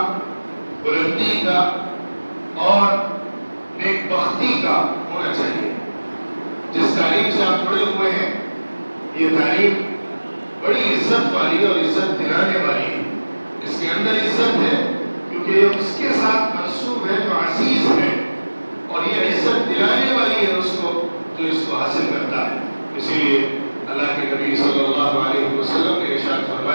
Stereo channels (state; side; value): inverted; both; correlation -1.00